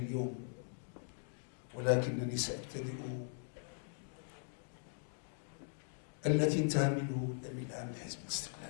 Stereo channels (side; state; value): right; silent; digital silence